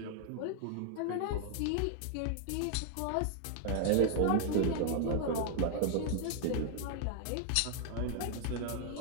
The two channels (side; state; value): both; different; correlation 0.00